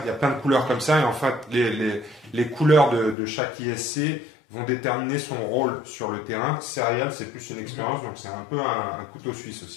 Il y a plein de couleurs comme ça et en fait les couleurs de chaque ISC vont déterminer son rôle sur le terrain. Serial, c'est plus une expérience, donc c'est un peu un couteau suisse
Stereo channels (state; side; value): drops out; right; at 3.2 s